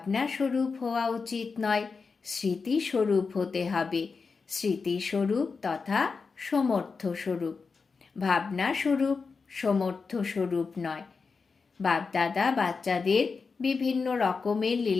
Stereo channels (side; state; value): right; quieter; 4.8 dB